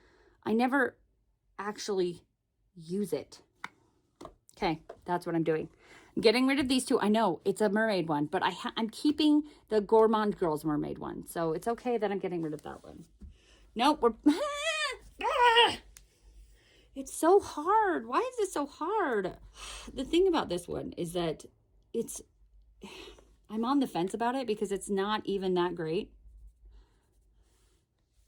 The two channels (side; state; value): both; identical; correlation 1.00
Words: I never actually use it. Okay, that's what I'm doing. I'm getting rid of these 2. I know it's a mermaid one, but I'm keeping the Gourmande Girls mermaid one. So it's okay that I'm getting rid of that one. Nope, it's so hard. Why is this so hard? The thing about this one is that I'm on the fence about it because it's not even that great.